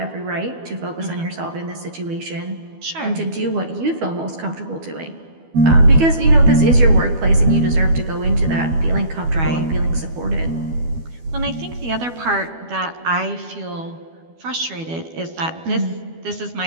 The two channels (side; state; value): left; late; 12 ms